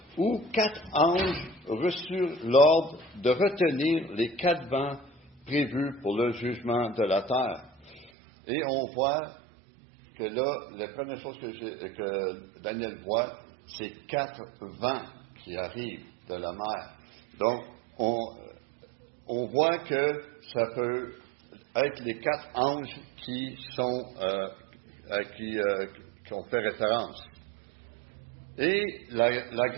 où 4 anges reçurent l'ordre de retenir les 4 vents prévus pour le jugement de la terre. Et on voit que là, la première chose que Daniel voit, c'est 4 vents qui arrivent de la mer. Donc, on voit que ça peut être les 4 anges qui ont fait référence. Et la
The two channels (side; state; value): left; drops out; at 8.1 s